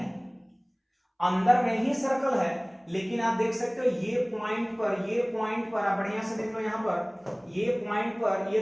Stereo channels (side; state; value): both; identical; correlation 1.00